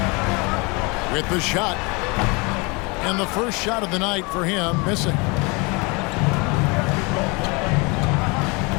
With the shot. And the first shot of the night for him, missing.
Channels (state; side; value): quieter; right; 28.5 dB